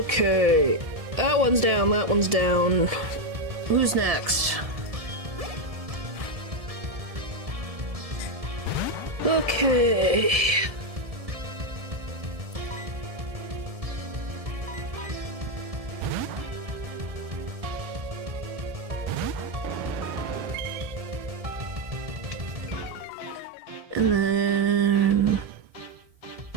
That one's down, that one's down. Who's next? Okay. And then...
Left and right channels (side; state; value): left; late; 1.7 ms